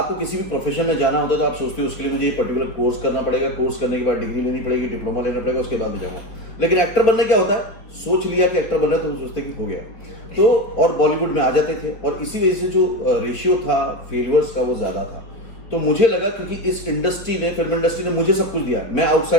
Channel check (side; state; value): right; late; 4.9 ms